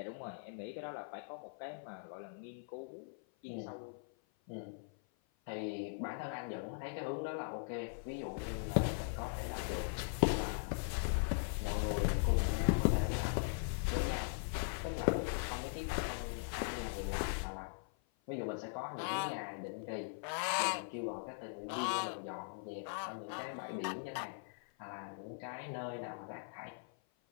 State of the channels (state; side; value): silent; right; 51 dB below the other